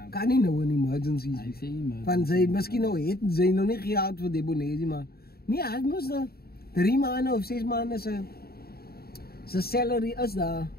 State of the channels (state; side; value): late; right; 0.45 ms